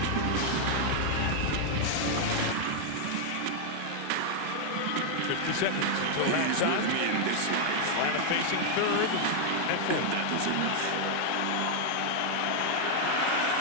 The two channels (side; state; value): both; different; correlation 0.00